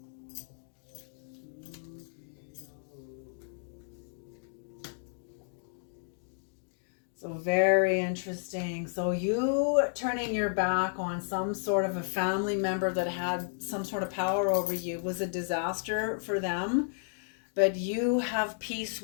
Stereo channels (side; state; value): right; silent; digital silence